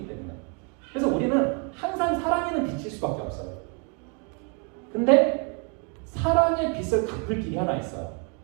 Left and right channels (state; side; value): quieter; left; 36.7 dB